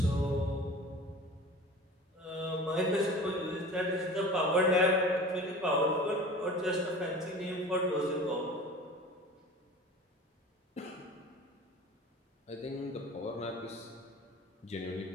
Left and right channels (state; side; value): normal; both; correlation 0.39